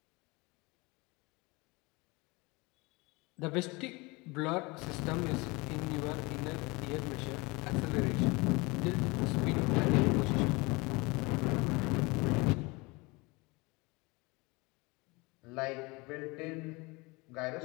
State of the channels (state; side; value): quieter; right; 25.3 dB